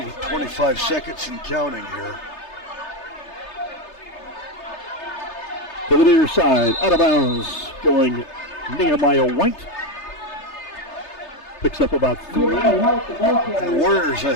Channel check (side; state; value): right; late; 3.3 ms